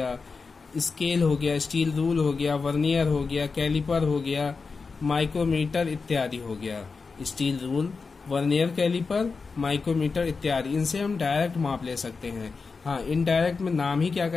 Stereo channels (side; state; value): right; quieter; 4.6 dB